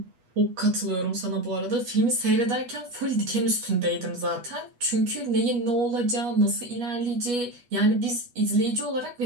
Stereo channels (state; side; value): late; left; 8.3 ms